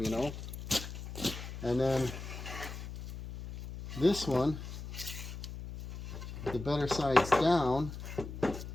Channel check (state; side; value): noise; left; hum, 9 dB below the sound